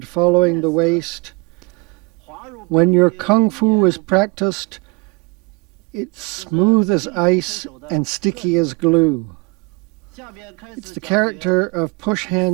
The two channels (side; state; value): left; quieter; 26.6 dB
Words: following the waist. When your kung fu is practiced, it's smooth as ice and sticky as glue. It's the character of push